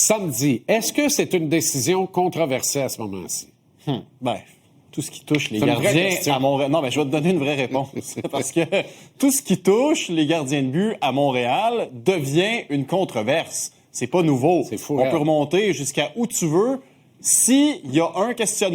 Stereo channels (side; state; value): both; identical; correlation 1.00